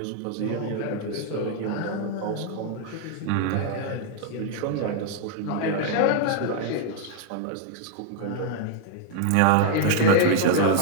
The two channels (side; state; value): both; different; correlation 0.00